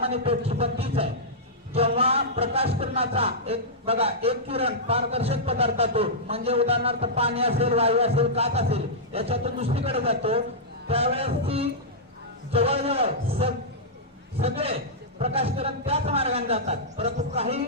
पेटची पण तीच आहे. जेव्हा प्रकाश किरणाचा एक किरण पारदर्शक पदार्थातून म्हणजे उदाहरणार्थ पाणी असेल, वायू असेल, काच असेल याच्यातून दुसरीकडे जातो त्यावेळेस ती जवळजवळ सगळे प्रकाश किरण त्याच मार्गाने जातात. परंतु काही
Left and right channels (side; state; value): both; normal; correlation -0.12